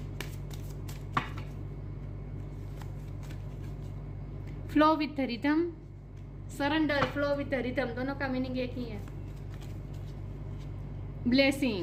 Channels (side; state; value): both; identical; correlation 1.00